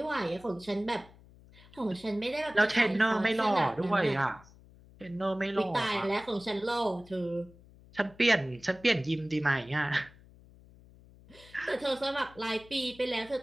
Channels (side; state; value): left; noise; hum, 24 dB below the sound